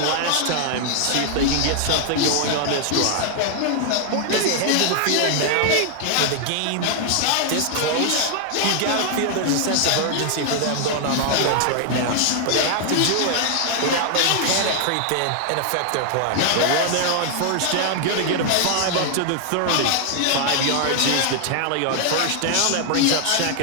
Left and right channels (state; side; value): different; both; correlation 0.00